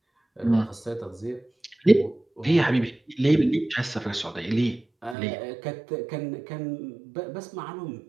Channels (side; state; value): left; drops out; at 5.2 s